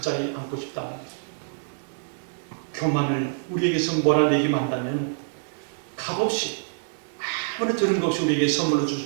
자리에 앉고 싶다는 거죠. 교만을 우리에게서 몰아내기만 한다면 값없이 아무나 들은 것 없이 우리에게 선물로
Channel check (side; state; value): left; silent; 59 dB below the other